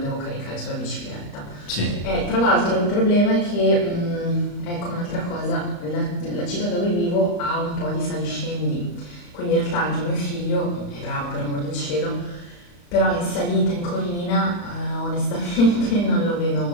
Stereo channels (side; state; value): right; late; 35 ms